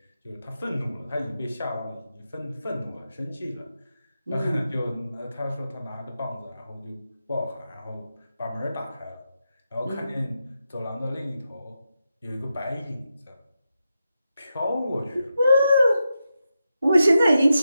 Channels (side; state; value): both; inverted; correlation -0.88